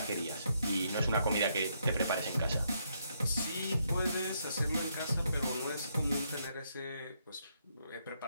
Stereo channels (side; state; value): both; inverted; correlation -0.75